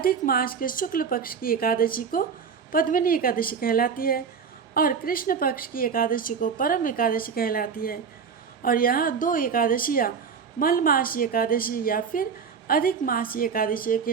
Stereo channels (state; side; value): quieter; left; 6.2 dB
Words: मास के शुक्ल पक्ष की एकादशी को पद्मिनी एकादशी कहलाती है और कृष्ण पक्ष की एकादशी को परम एकादशी कहलाती है। और यह 2 एकादशियाँ मलमासी एकादशी या फिर अधिक मासी एकादशी